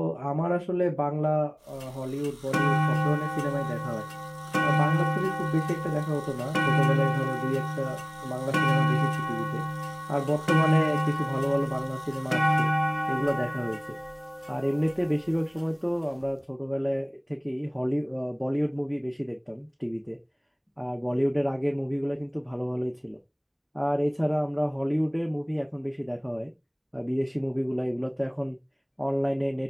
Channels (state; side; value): identical; both; correlation 1.00